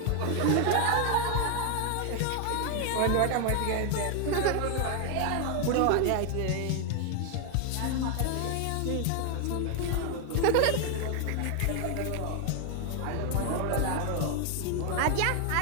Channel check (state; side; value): different; both; correlation 0.00